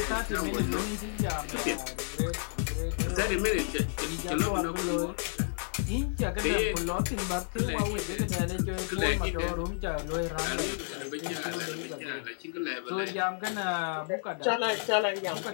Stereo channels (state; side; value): silent; right; digital silence